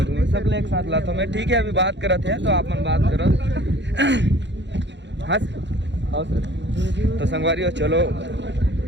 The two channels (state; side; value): late; left; 0.52 ms